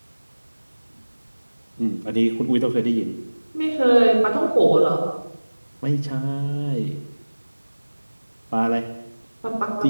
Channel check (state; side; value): inverted; both; correlation -1.00